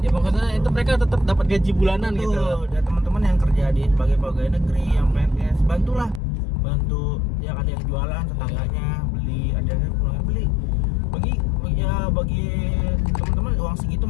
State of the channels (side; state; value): right; drops out; at 6.2 s